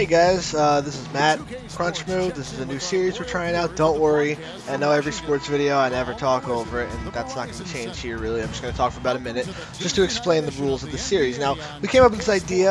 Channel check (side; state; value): both; identical; correlation 1.00